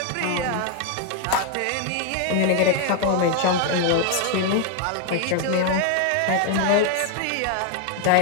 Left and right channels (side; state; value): both; different; correlation 0.01